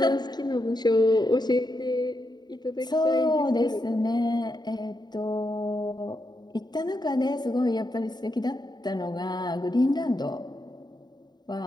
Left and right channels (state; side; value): late; right; 0.20 ms